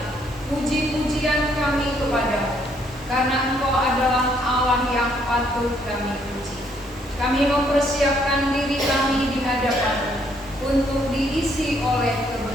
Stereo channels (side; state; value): both; normal; correlation 0.69